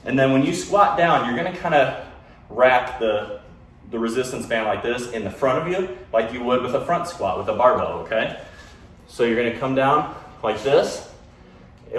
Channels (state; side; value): identical; both; correlation 1.00